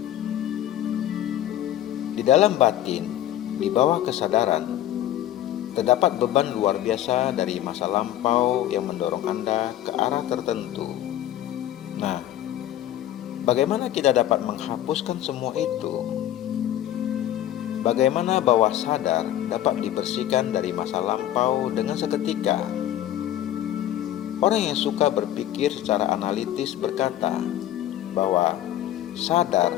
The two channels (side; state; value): right; quieter; 12.4 dB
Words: Di dalam batin, di bawah kesadaran, terdapat beban luar biasa dari masa lampau yang mendorong Anda ke arah tertentu. Nah, bagaimana kita dapat menghapuskan semua itu? Bagaimana bawah sadar dapat dibersihkan dari masa lampau dengan seketika? Orang yang suka berpikir secara analitis berkata bahwa